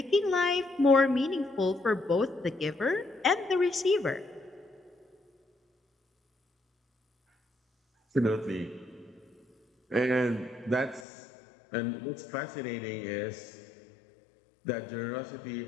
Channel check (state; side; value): drops out; right; at 11.0 s